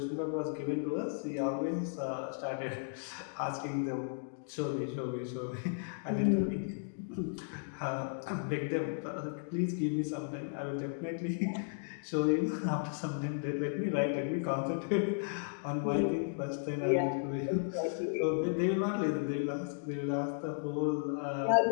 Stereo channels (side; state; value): right; silent; digital silence